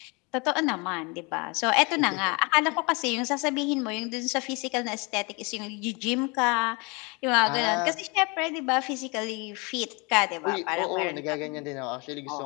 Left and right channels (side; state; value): right; quieter; 28.9 dB